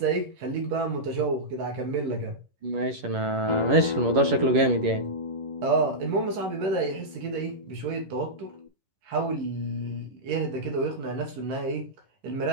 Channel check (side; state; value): left; late; 11 ms